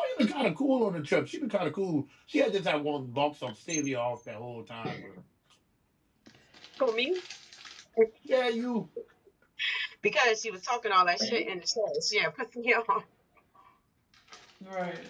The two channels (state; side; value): identical; both; correlation 1.00